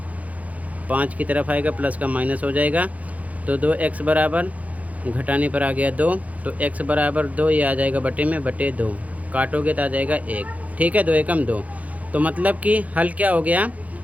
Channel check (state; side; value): late; left; 0.071 ms